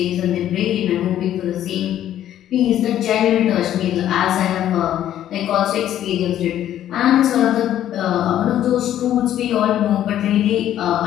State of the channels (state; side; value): quieter; right; 11.6 dB